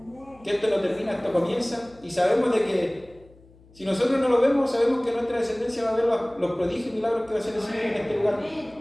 Que esto no termina, esto comienza. Y sabemos de que si nosotros no lo vemos, sabemos que nuestra descendencia va a ver los prodigios y milagros que va a hacer el Señor en este lugar.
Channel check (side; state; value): left; noise; hum, 26 dB below the sound